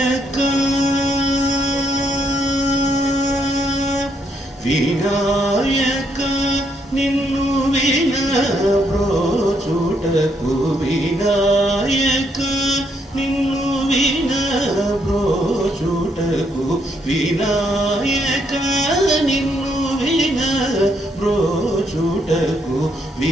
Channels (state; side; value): normal; both; correlation 0.74